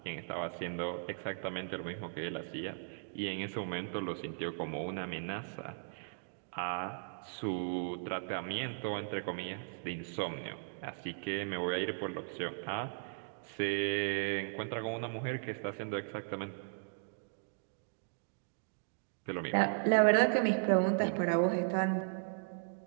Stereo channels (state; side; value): silent; left; digital silence